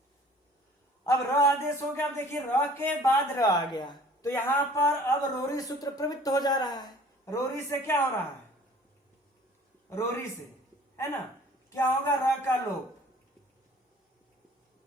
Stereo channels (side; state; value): both; normal; correlation 0.51